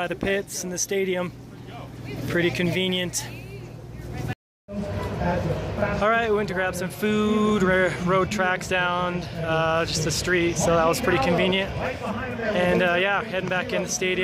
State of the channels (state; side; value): identical; both; correlation 1.00